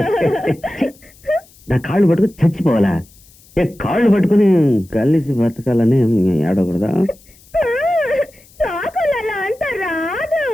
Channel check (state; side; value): noise; left; hiss, 27 dB below the sound